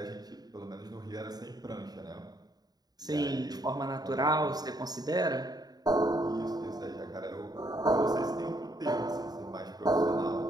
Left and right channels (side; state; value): left; late; 0.19 ms